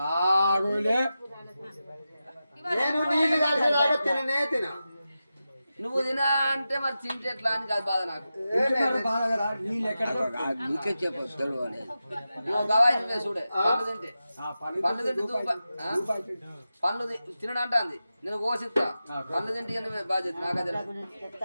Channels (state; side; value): inverted; both; correlation -0.92